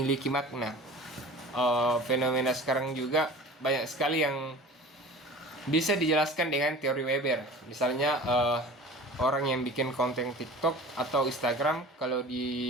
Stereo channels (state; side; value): normal; both; correlation 0.39